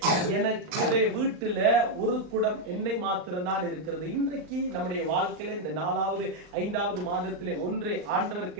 எனக்கு வீட்டுல ஒரு குடம் எண்ணெய் மாத்திரம்தான் இருக்கிறது. இன்றைக்கு நம்முடைய வாழ்க்கையில இந்த 4வது 5வது மாதத்திலே ஒன்றே ஆண்டவர்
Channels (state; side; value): late; left; 39 ms